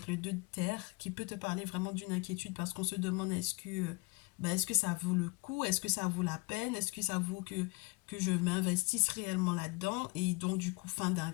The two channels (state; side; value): quieter; right; 28.9 dB